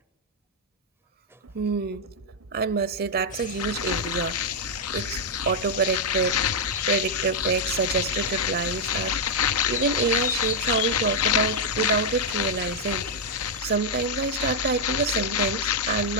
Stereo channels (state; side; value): normal; both; correlation -0.03